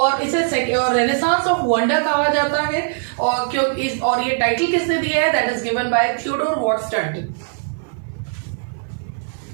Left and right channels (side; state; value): left; silent; 59 dB below the other